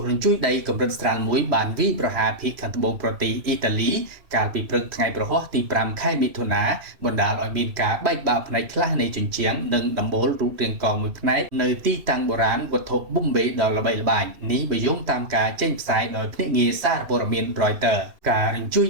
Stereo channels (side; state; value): left; late; 2.7 ms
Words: រញ្ជួយដីកម្រិតស្រាលមួយបានវាយប្រហារភាគខាងត្បូងប្រទេសអ៊ីតាលីកាលពីព្រឹកថ្ងៃប្រហ័សទី5ខែមិថុនាបណ្ដាលឲ្យមានការបែកបាក់ផ្នែកខ្លះនៃជញ្ជាំងនិងដំបូលរូបរាងកមួយផ្នែកនៅទីតាំងបុរាណវត្ថុប៊ុំបេដ៏ល្បីល្បាញនេះបើយោងតាមការចេញផ្សាយដោយភ្នាក់ងារសារព័ត៌មាន Reuters ការរញ្ជួយ